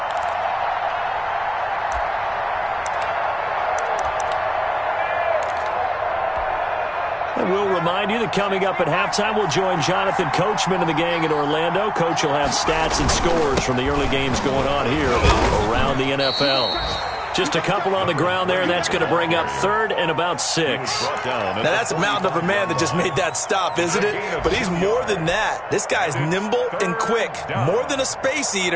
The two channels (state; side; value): identical; both; correlation 1.00